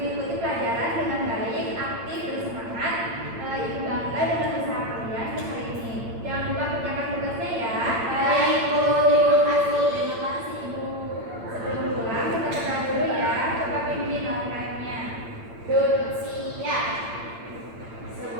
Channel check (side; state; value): left; late; 8.8 ms